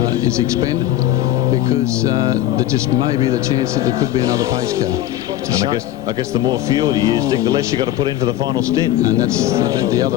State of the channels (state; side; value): quieter; right; 13.2 dB